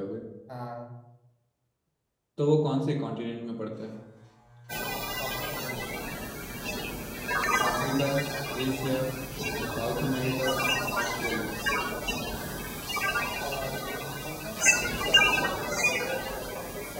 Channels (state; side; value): identical; both; correlation 1.00